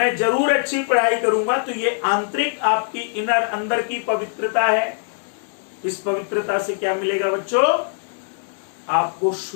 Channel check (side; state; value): right; silent; digital silence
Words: जरूर अच्छी पढ़ाई करूंगा। तो ये आंतरिक आपकी इनर अंदर की पवित्रता है। इस पवित्रता से क्या मिलेगा बच्चों, आपको